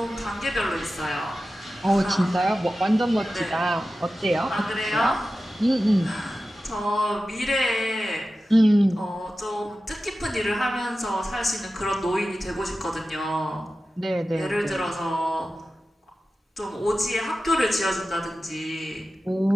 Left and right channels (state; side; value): normal; both; correlation 0.94